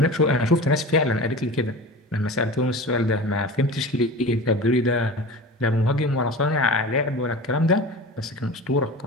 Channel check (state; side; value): normal; both; correlation 0.34